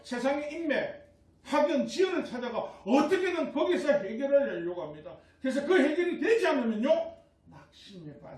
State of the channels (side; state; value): both; identical; correlation 1.00